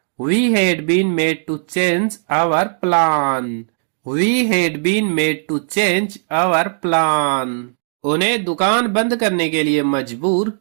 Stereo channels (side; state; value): left; silent; digital silence